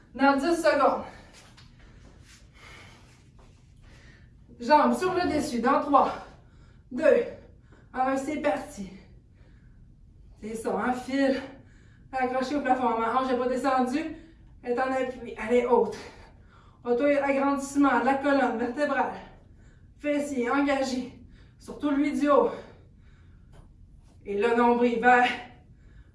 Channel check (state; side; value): identical; both; correlation 1.00